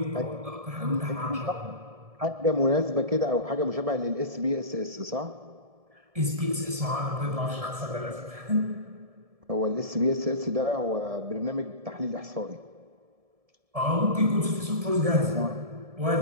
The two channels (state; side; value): late; left; 1.7 ms